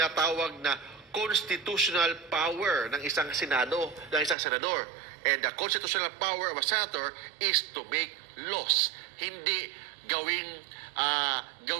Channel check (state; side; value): drops out; left; at 4.4 s